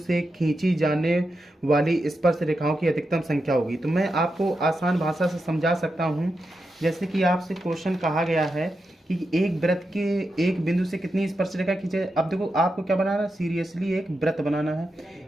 खींची जाने वाली स्पर्श रेखाओं की अधिकतम संख्या होगी। तो मैं आपको आसान भाषा से समझा सकता हूँ। जैसे कि आपसे क्वेश्चन कहा गया है कि एक वृत्त के एक बिंदु से कितनी स्पर्श रेखा खींचे। अब देखो आपको क्या बनाना है, सीरियसली एक वृत्त बनाना है।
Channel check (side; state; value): both; normal; correlation 0.88